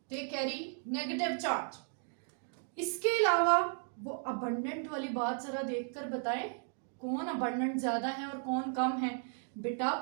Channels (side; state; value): left; silent; 54 dB below the other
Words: They carry negative charge. इसके अलावा वो अबंडेंट वाली बात जरा देखकर बताएं, कौन अबंडेंट ज्यादा है और कौन कम है? बेटा